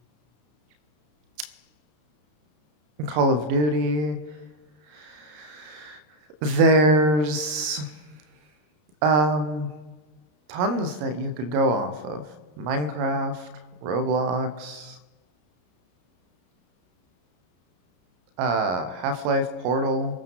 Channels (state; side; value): late; left; 33 ms